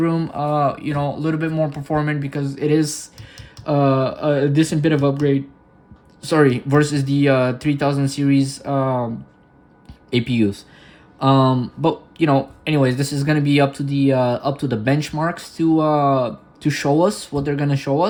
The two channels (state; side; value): identical; both; correlation 1.00